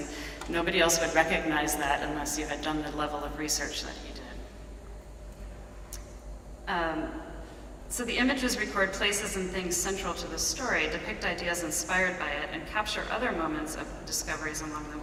nobody else would recognize that unless you had done the level of research that he did. So the images record places and things central to the story, depict ideas inspired by it, and capture other moments of discoveries along the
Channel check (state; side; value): identical; both; correlation 1.00